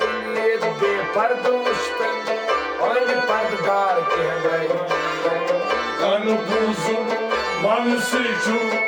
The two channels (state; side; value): identical; both; correlation 1.00